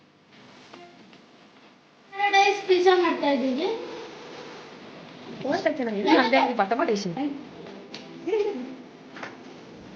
ಪ್ಯಾರಡೈಸ್ ಪಿಜ್ಜಾ ಮಾಡ್ತಾ ಇದ್ದೀವಿ.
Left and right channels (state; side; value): identical; both; correlation 1.00